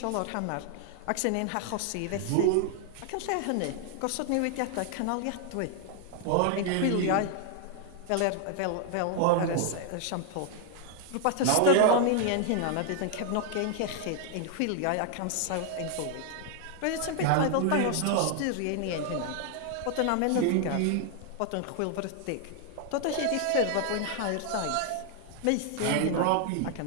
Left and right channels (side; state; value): both; different; correlation 0.00